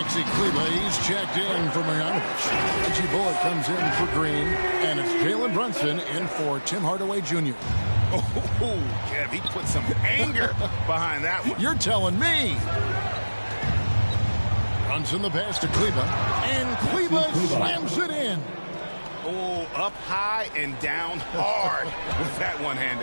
Kleber, he's checked in for Marjanovic. Reggie Bullock comes in for Green. And it's Jalen Brunson in for Tim Hardaway Jr. Oh, Kev, he put some anger behind that one. You're telling me. Brunson the pass to Kleber. And Kleber slams it in. Oh, up high and down hard with that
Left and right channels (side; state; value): both; inverted; correlation -1.00